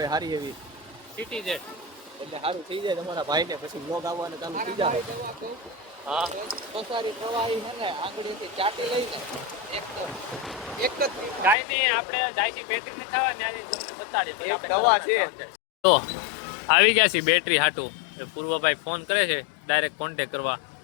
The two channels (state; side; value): drops out; right; at 11.6 s